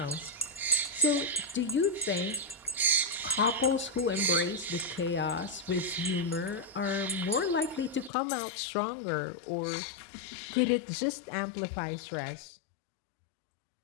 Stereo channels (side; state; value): right; drops out; at 8.1 s